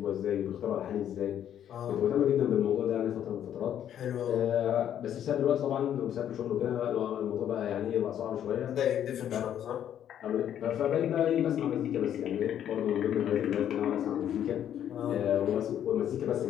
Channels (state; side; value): quieter; right; 10.2 dB